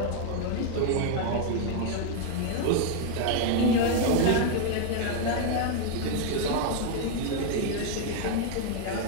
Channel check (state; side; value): different; both; correlation 0.01